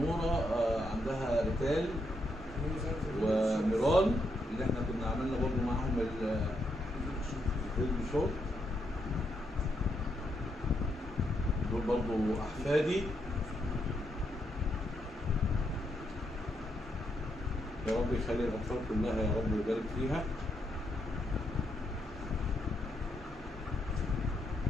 عندها ريتال وميران اللي احنا كنا عملنا برضه معاهم الفيلم شوت. دول برضه احفادي. يا رب يخلي الاطفال كلها يا رب ويبارك فيها.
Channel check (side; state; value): both; normal; correlation 0.79